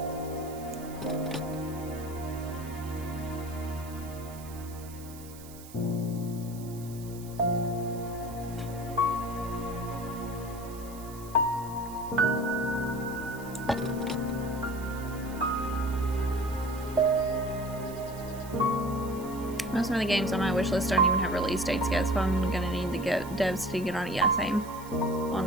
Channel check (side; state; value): right; noise; hiss, 18 dB below the sound